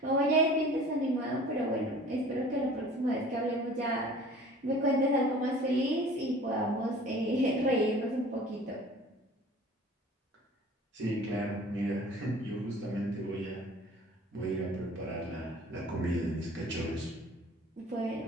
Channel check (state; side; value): normal; both; correlation 0.46